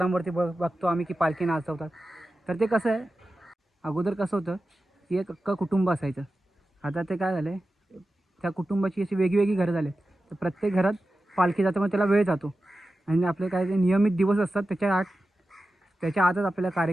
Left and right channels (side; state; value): both; normal; correlation 0.93